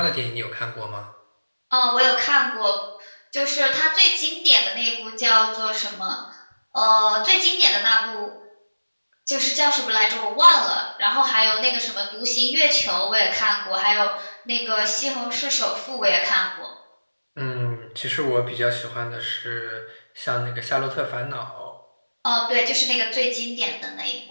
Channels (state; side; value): inverted; both; correlation -1.00